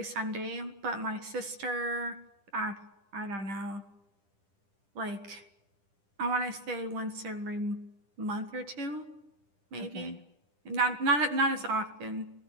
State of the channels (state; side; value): late; left; 10 ms